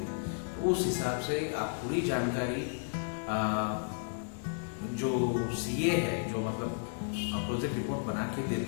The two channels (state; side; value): silent; right; digital silence